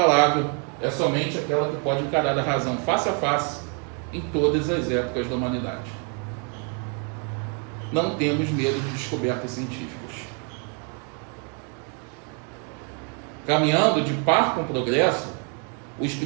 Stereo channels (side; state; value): left; quieter; 39.2 dB